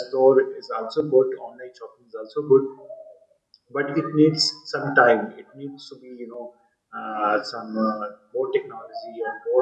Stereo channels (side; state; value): both; identical; correlation 1.00